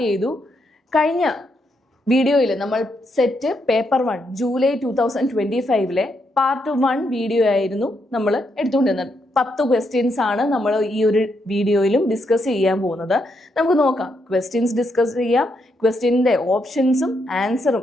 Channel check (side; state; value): both; normal; correlation 0.79